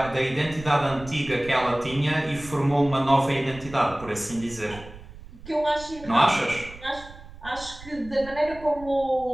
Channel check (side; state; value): right; noise; rumble, 17 dB below the sound